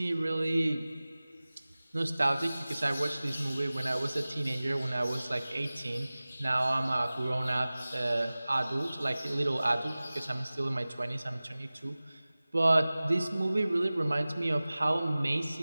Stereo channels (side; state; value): both; inverted; correlation -0.98